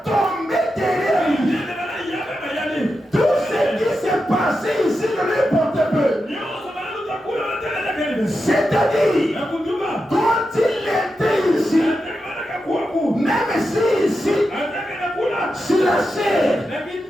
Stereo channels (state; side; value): normal; both; correlation 0.89